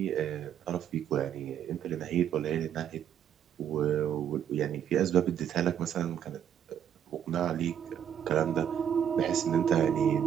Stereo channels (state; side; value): quieter; left; 9.3 dB